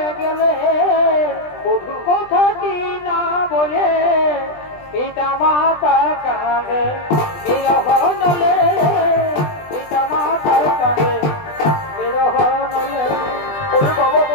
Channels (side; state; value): right; late; 20 ms